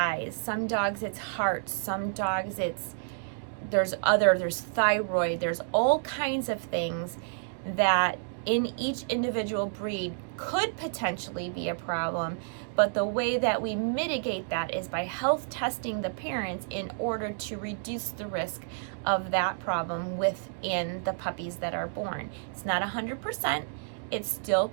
some dogs it's heart, some dogs there's thyroid, there's all kinds of things that in each individual breed could potentially be a problem, but the way that we mitigate that is by health testing the parents in order to reduce the risk of that problem within the puppies that are born. It's not 100%. It still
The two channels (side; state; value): left; silent; digital silence